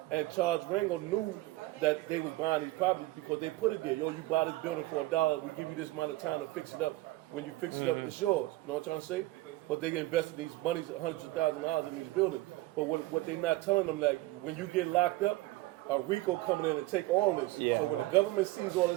And Charles Rango knew that they was buying these properties because they put it there. You buy this building for $1, we give you this amount of time to fix it up. When you fix it up, it's yours. You know what I'm trying to say? But they invested these monies, hundreds of thousands of dollars in these buildings. But what they not telling them, like, when you get locked up, a RICO coming in and take all this. Yeah. So when the government sees all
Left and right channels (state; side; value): quieter; left; 18.9 dB